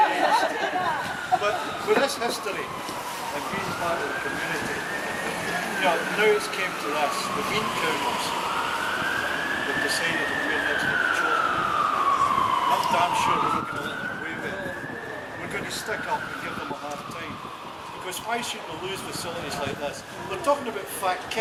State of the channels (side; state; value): both; identical; correlation 1.00